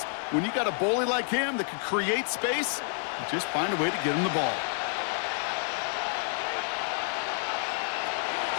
when you got a bully like him that can create space, you just find a way to get him the ball.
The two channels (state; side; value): silent; right; 58 dB below the other